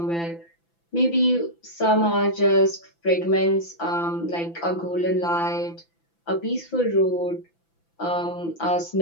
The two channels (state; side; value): late; right; 5.9 ms